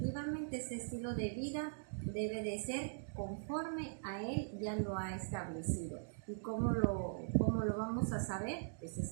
ese estilo de vida debe de ser conforme a Él ya lo ha establecido. ¿Y cómo lo vamos a saber? Pues es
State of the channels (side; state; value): left; silent; digital silence